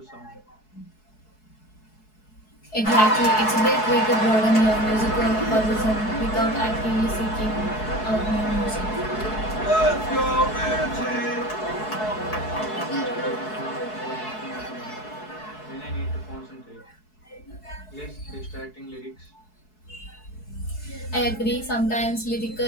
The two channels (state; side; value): late; right; 4.7 ms